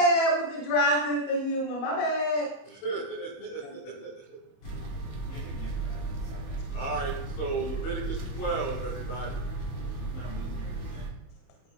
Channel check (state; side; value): late; right; 30 ms